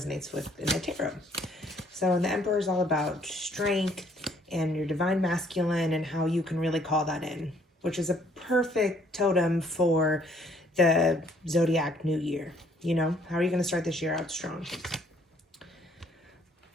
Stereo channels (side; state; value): both; normal; correlation 0.63